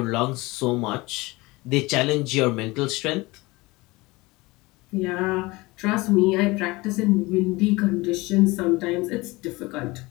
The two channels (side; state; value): right; quieter; 22.4 dB